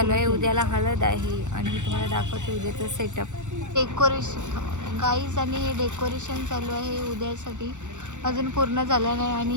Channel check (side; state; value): left; late; 0.85 ms